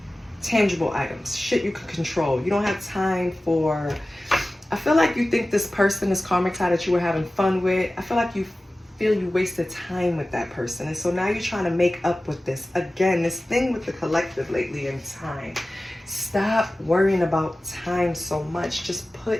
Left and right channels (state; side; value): normal; both; correlation 0.96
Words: tangible items, shit you can control. You don't have time for, I feel like you think this person, this karmic tie that you were having fun with, I feel like you feel you wasted time with that person. And so now you're trying to make up with this. Again, this thing with the collective lately in time. Stop worrying about time so much. Just